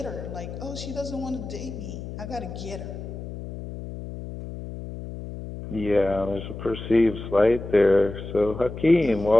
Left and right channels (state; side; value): noise; left; hum, 10 dB below the sound